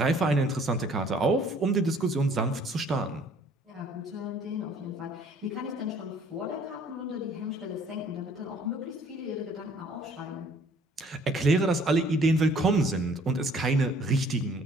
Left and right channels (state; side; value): normal; both; correlation 0.58